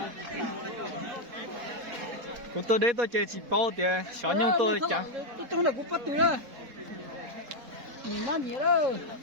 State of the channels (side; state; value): left; late; 4.2 ms